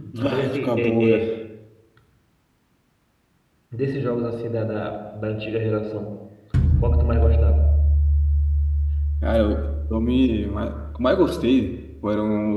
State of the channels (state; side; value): identical; both; correlation 1.00